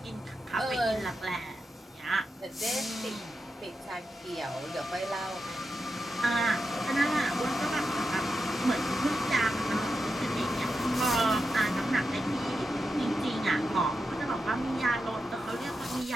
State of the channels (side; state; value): both; normal; correlation 0.88